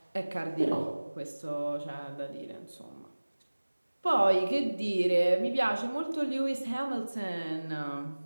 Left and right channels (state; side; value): inverted; both; correlation -1.00